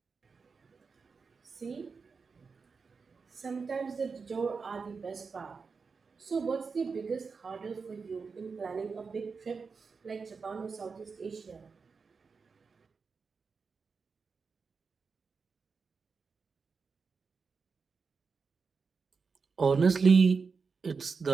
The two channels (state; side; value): quieter; left; 5.0 dB